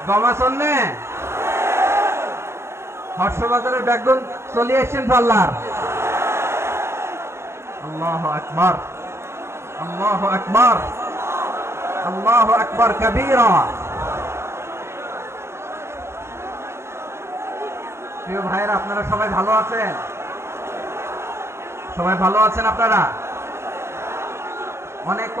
গমাছন নে হর্ষবাজারের বেগুন চলে আসছেন পাল্লার। আল্লাহু আকবার, আল্লাহু আকবার, আল্লাহু আকবার কবীরা। প্রিয় ভাইরা, আপনারা সবাই ভালো আছেন? সবাই ভালো আছেন? আপনারা অনেক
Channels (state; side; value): late; left; 0.13 ms